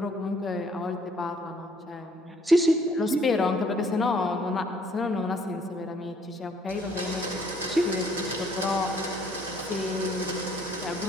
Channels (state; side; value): normal; both; correlation 0.62